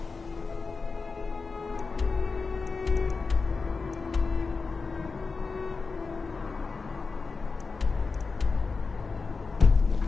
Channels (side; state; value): right; quieter; 4.4 dB